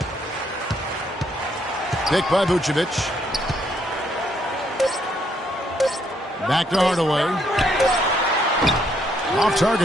Pick by Vucevic. Back to Hardaway. Off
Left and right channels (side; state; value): both; normal; correlation 0.72